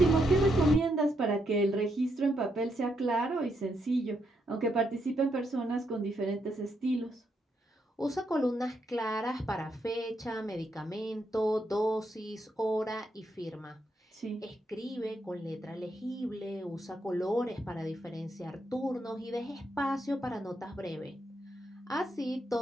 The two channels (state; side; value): normal; both; correlation 0.79